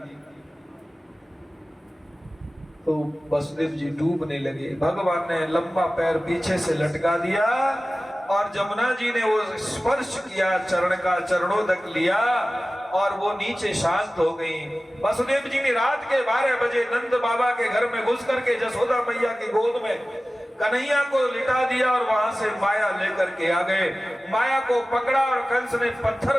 तो वसुदेव जी डूबने लगे। भगवान ने लंबा पैर पीछे से लटका दिया और जमुना जी ने वो स्पर्श किया, चरण का चरणों तक लिया और वो नीचे शांत हो गई। वसुदेव जी ने रात के 12 बजे नंद बाबा के घर में घुस करके जसोदा मैया की गोद में कन्हैया को लिटा दिया और वहां से माया लेकर के आ गए। माया को पकड़ा और कंस ने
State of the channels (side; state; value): both; normal; correlation 0.96